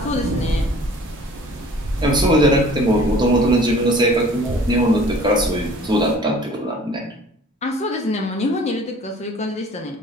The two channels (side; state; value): both; normal; correlation 0.50